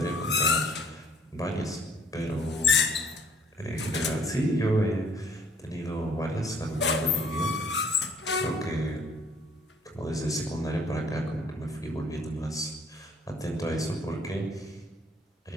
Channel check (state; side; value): normal; both; correlation 0.57